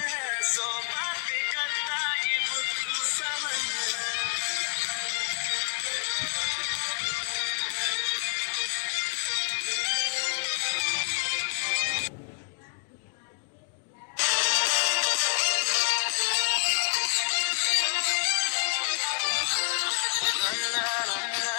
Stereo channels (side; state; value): right; silent; digital silence